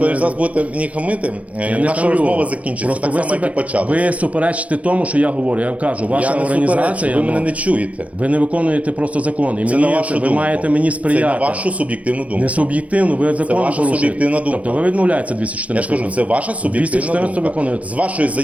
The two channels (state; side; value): late; left; 0.066 ms